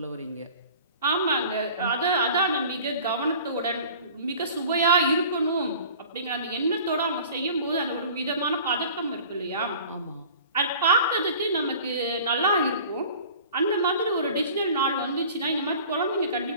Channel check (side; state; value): both; inverted; correlation -0.45